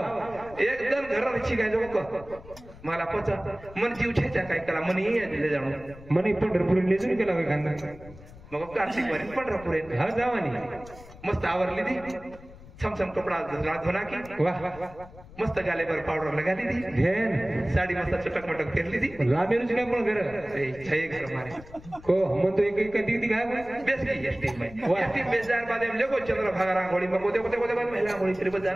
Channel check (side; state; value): left; noise; rumble, 19 dB below the sound